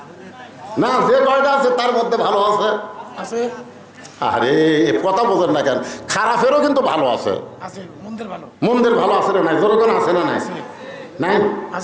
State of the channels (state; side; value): identical; both; correlation 1.00